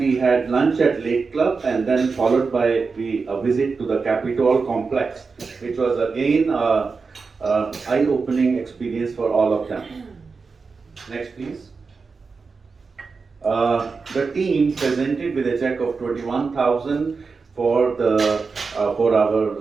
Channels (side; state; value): left; quieter; 4.7 dB